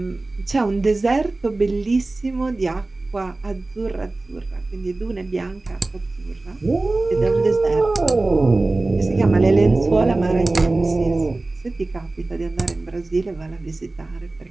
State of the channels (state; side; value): quieter; left; 3.1 dB